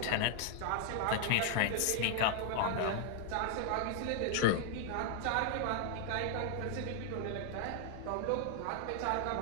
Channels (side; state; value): both; different; correlation 0.00